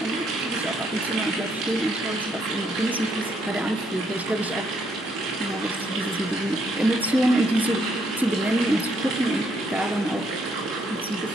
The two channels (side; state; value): both; normal; correlation 0.72